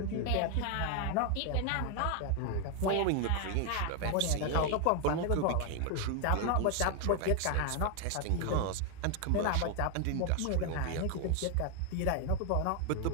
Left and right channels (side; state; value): both; different; correlation 0.00